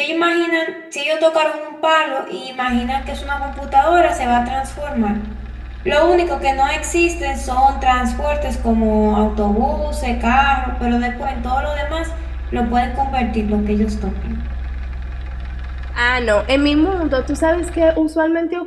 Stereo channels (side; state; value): both; identical; correlation 1.00